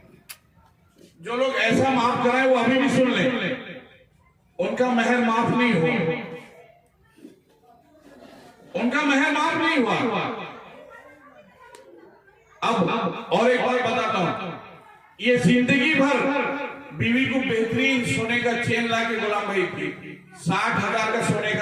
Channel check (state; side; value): identical; both; correlation 1.00